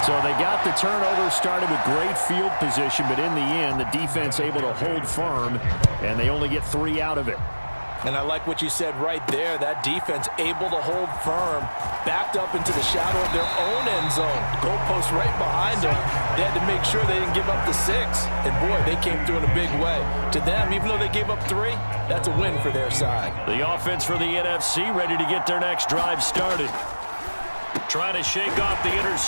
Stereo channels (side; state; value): both; inverted; correlation -1.00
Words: So they got the turnover started with great field position, but in the end, the defense able to hold firm, and they only get 3 out of it. And I like what you said right there. That defense able to hold firm, backed up into the shadow of their own end zone. Goalpost right behind them. They had to make sure they didn't give up the 6. And boy, they came through in a big way. To them, even though they gave up 3, that's a win for their side. The offense for the NFC ready to get their next drive started. Trying to shake off the